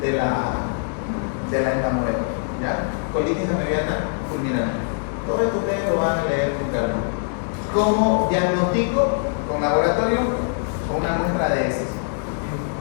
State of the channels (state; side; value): silent; right; digital silence